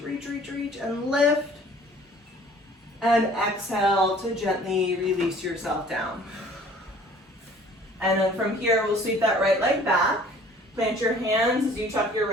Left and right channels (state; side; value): normal; both; correlation 0.52